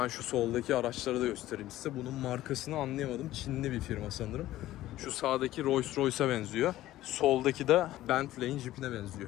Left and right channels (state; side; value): quieter; right; 14.9 dB